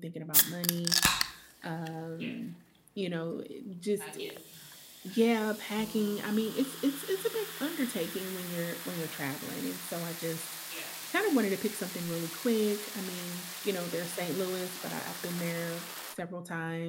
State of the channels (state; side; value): identical; both; correlation 1.00